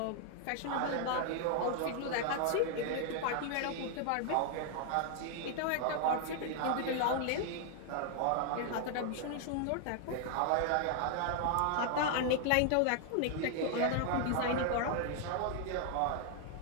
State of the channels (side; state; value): both; different; correlation 0.00